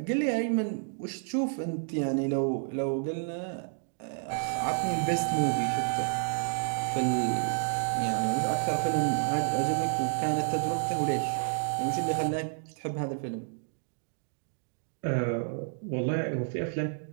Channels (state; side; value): silent; left; 58 dB below the other